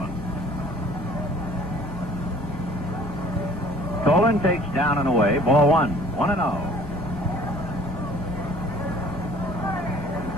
Tolan takes down and away, ball 1, 1-0.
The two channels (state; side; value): noise; left; rumble, 13 dB below the sound